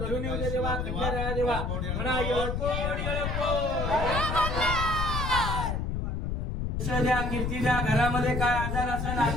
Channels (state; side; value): noise; left; rumble, 1 dB below the sound